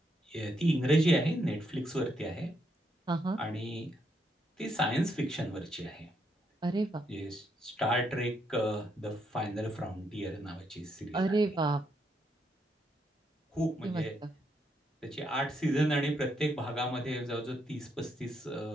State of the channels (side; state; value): both; normal; correlation 0.77